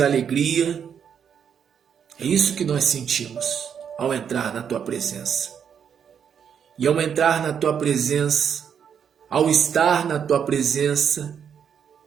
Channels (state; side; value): quieter; left; 7.8 dB